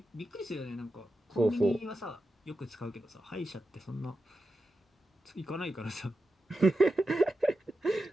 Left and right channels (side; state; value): both; normal; correlation 0.90